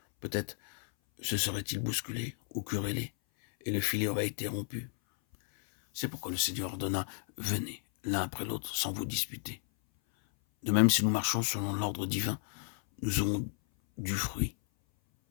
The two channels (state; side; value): silent; right; 56 dB below the other